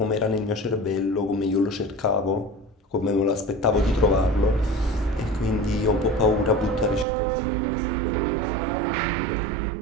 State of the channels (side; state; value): left; drops out; at 7.1 s